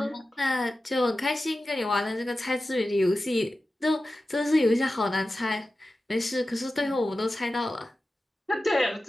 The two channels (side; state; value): both; normal; correlation 0.94